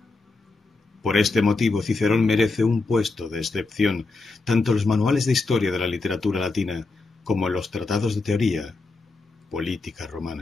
Por este motivo, Cicerón merece un puesto de excepción tanto en los manuales de historia de la literatura latina como en los tratados de teoría política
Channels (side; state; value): right; quieter; 3.6 dB